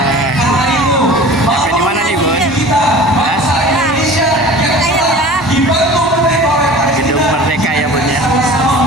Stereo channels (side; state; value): both; normal; correlation 0.41